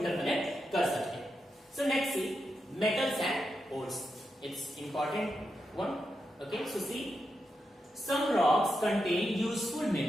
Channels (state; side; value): normal; both; correlation 0.86